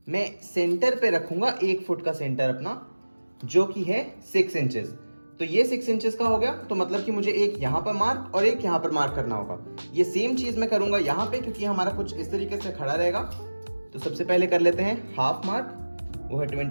मैं सेंटर पे रखूंगा 1 फुट का सेंटर अपना, जो कि है 6 इंचेस। तो ये 6 इंचेस का हो गया, तो मतलब कि मुझे एक यहाँ पर मार्क और एक यहाँ पर मार्क करना होगा। ये सेम चीज मैं करूंगा यहाँ पे क्योंकि हमारा कुछ इस तरीके से खड़ा रहेगा। तो सबसे पहले कर लेते हैं हाफ मार्क, वो है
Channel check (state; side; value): inverted; both; correlation -1.00